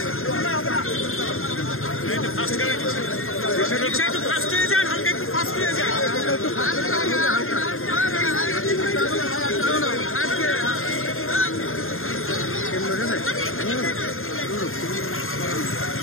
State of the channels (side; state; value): right; late; 0.61 ms